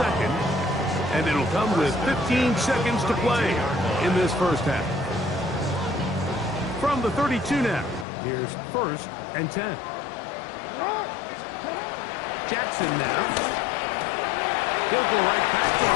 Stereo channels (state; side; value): drops out; right; at 8.1 s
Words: And it'll come with 15 seconds to play in this first half. From the 32 now, here's first and 10. Jackson now. He'll go right back to